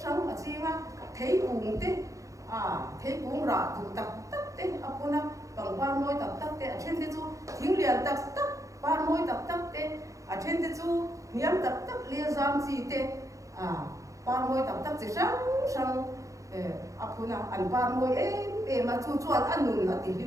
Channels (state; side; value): late; left; 0.16 ms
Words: sáng ở chi mà thấy cuồng thế thấy cuồng rạ tụ tập thế apuna bằng ba môi tập thế ở trên thế chú tiếng liền tập ba môi tập thế ở trên thế chú niệm tập lia giam gì thế ba môi tập chỉ sáng apuna ăn ba môi mà chú ăn nụn là tí